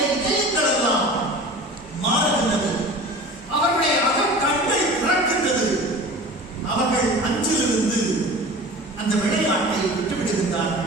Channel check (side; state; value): both; normal; correlation 0.38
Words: இதயங்கள் எல்லாம் மாறுகின்றது. அவருடைய அகக்கண்கள் திறக்கின்றது. அவர்கள் அஞ்சிலிருந்து அந்த விளையாட்டை